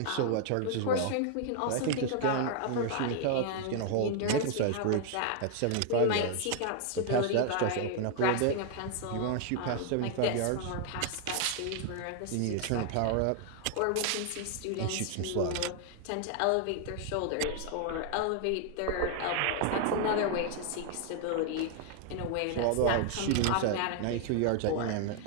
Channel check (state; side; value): different; both; correlation 0.00